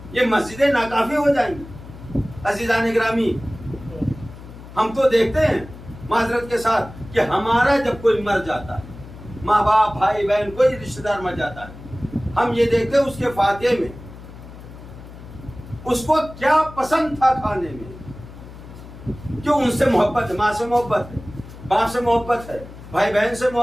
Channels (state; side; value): noise; left; hum, 16 dB below the sound